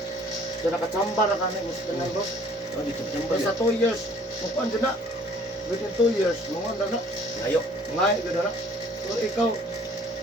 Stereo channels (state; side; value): normal; both; correlation 0.56